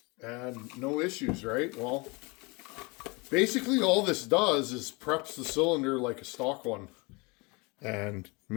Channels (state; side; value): quieter; right; 27.4 dB